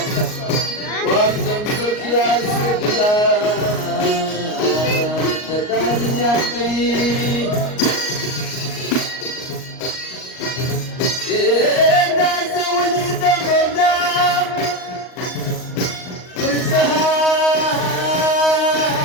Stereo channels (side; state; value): right; late; 38 ms